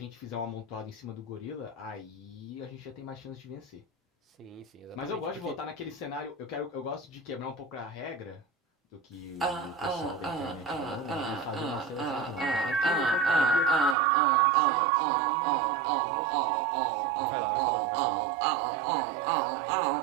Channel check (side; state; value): left; drops out; at 14.0 s